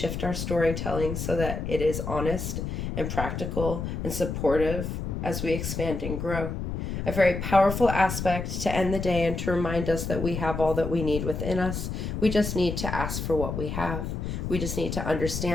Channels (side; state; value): left; noise; rumble, 4 dB below the sound